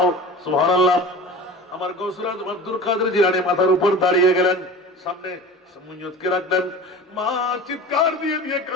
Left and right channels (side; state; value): both; normal; correlation 0.37